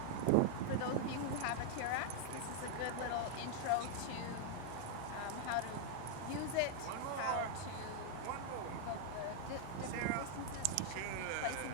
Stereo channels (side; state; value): both; different; correlation 0.00